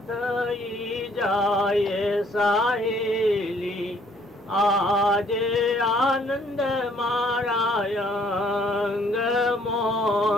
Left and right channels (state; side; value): normal; both; correlation 0.62